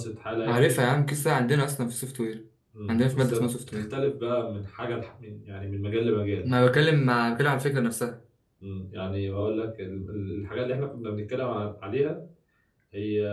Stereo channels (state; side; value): identical; both; correlation 1.00